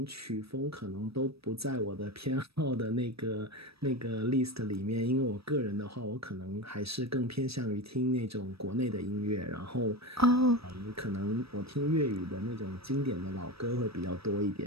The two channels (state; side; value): late; left; 0.77 ms